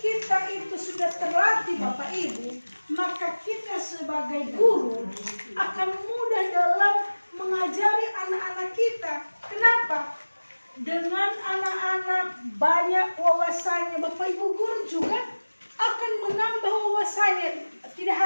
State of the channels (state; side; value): inverted; both; correlation -1.00